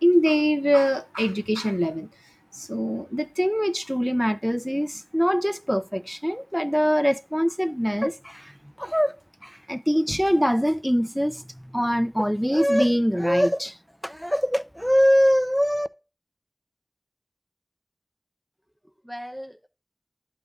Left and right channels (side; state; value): both; identical; correlation 1.00